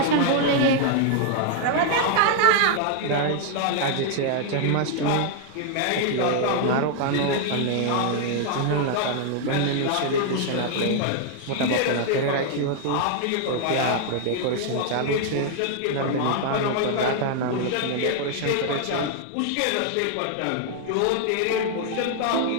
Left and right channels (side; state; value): both; different; correlation 0.00